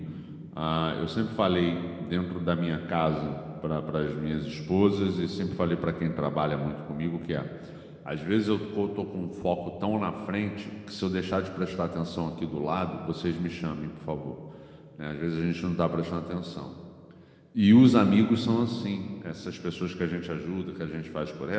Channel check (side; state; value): both; identical; correlation 1.00